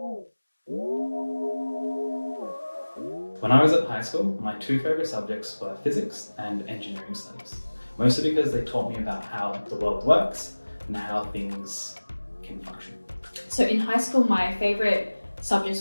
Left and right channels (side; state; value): both; inverted; correlation -1.00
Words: When I was at high school, my two favourite subjects were physics and engineering studies, mostly because they taught me about how the world works and how things can function. So in high school, my favourite